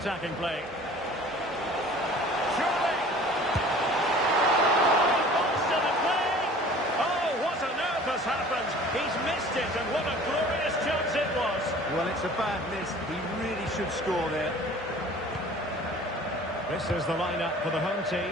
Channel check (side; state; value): both; normal; correlation 0.46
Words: play. Surely! Balls to the play! Oh, what on earth has happened? He's missed it, and what a glorious chance it was. Well, it's a bad miss. He really should score there. This is the lineup for the home